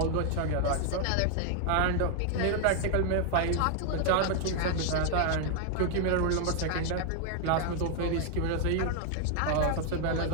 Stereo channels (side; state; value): both; different; correlation 0.00